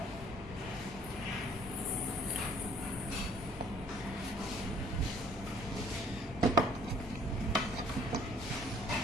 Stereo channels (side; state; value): left; noise; rumble, 12 dB below the sound